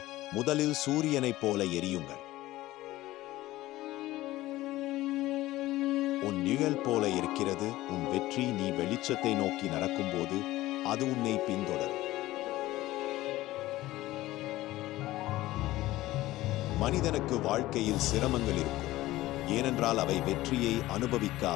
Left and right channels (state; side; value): quieter; right; 16.9 dB